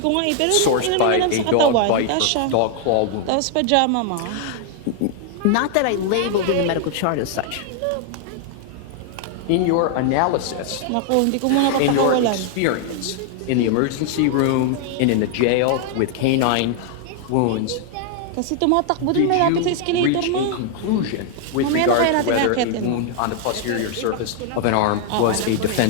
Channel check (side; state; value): both; different; correlation 0.00